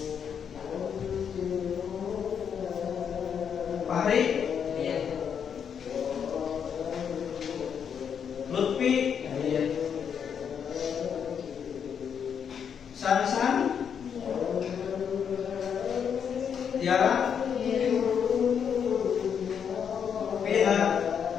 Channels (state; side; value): quieter; right; 7.6 dB